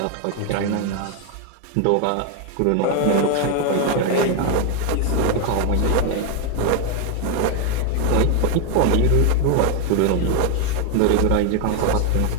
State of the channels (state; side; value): different; both; correlation 0.01